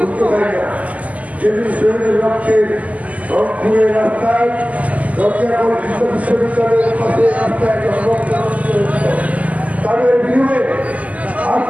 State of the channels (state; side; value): late; left; 0.073 ms